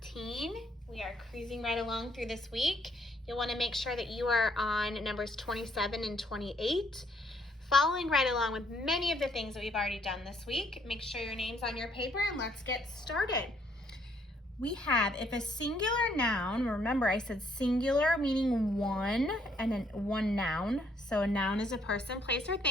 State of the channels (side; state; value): both; normal; correlation 0.68